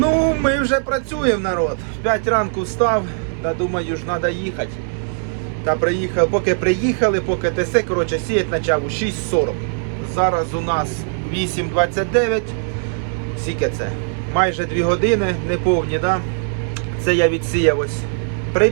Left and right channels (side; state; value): left; silent; digital silence